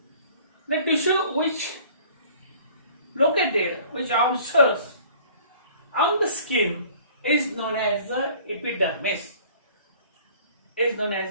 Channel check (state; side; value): inverted; both; correlation -0.51